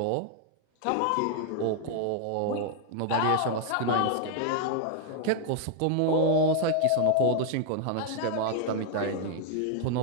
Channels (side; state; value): both; different; correlation 0.00